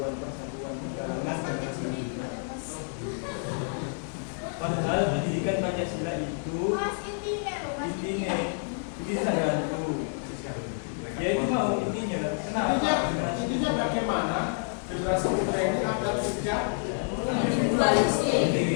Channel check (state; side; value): silent; right; 59 dB below the other